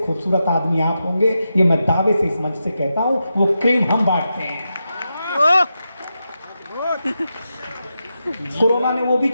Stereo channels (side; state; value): both; inverted; correlation -0.88